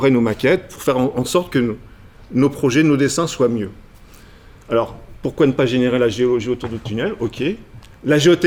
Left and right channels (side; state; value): both; identical; correlation 1.00